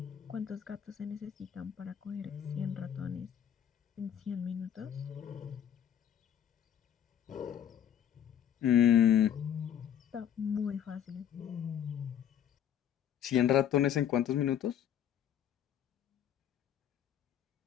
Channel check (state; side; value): quieter; right; 9.7 dB